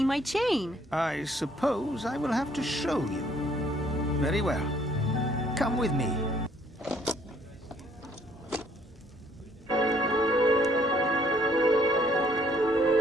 my chain. I suppose I will have to show you. Very well. Come with me.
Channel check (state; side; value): normal; both; correlation 0.63